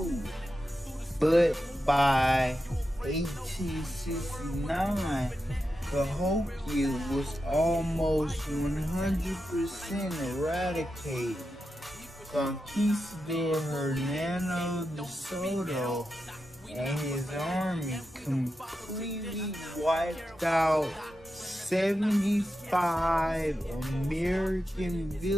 But by 1869, Cahokia was almost 100% eradicated. Conquistador Hernando de Soto and his army completely wiped out 75 American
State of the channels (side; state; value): both; normal; correlation 0.89